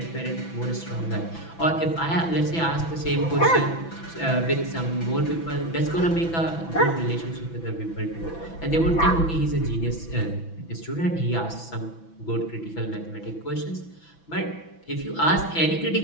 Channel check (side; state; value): right; late; 6.0 ms